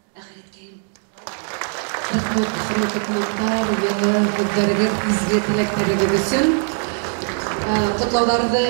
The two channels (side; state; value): left; silent; 55 dB below the other